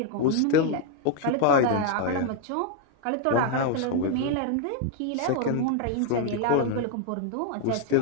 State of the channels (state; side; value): different; both; correlation 0.01